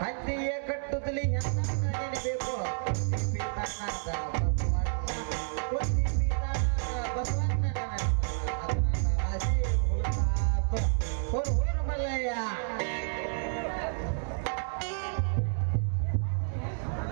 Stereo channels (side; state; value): left; silent; digital silence